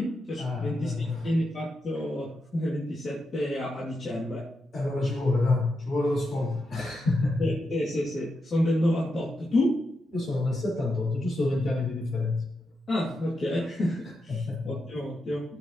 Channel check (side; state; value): both; normal; correlation 0.86